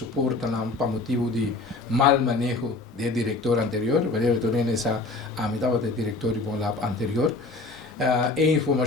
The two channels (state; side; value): quieter; right; 3.4 dB